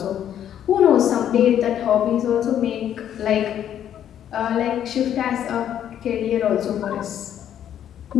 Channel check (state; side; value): quieter; right; 10.2 dB